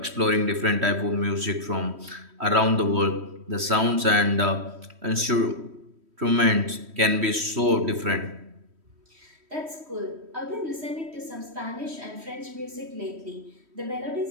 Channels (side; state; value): left; late; 3.1 ms